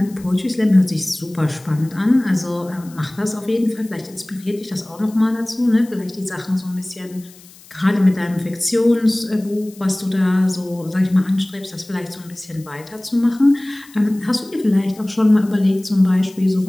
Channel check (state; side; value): noise; left; hiss, 23 dB below the sound